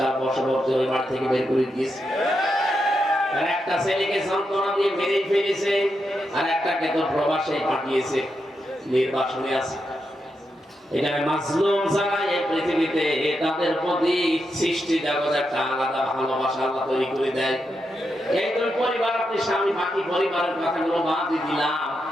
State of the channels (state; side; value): normal; both; correlation 0.85